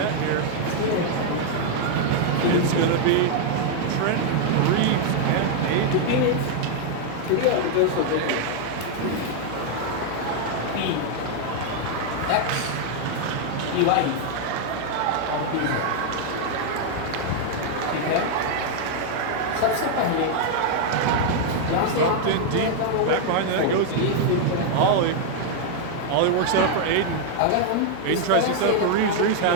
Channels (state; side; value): different; both; correlation 0.00